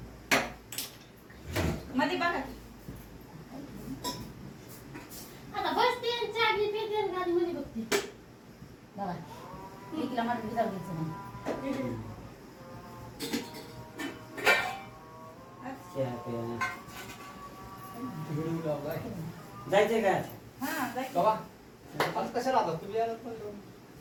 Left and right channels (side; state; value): both; identical; correlation 1.00